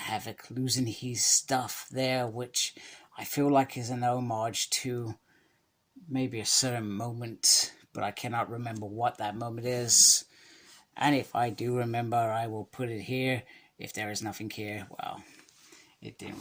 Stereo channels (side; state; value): both; identical; correlation 1.00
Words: losing his stuff there, which I feel like is an homage to maybe a certain moment, but I cannot remember what that moment is. And if I do remember, I will put it here. If there is nothing here, well, it didn't